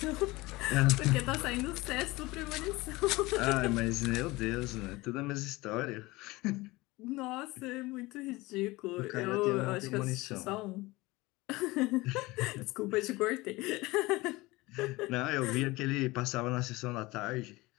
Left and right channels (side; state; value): right; quieter; 21.3 dB